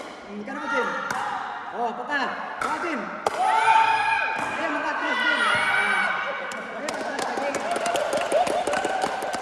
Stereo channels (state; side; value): identical; both; correlation 1.00